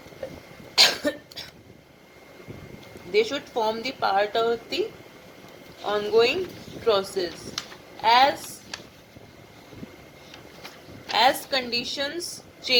They should form the part of the ongoing process. As conditions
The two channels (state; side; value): identical; both; correlation 1.00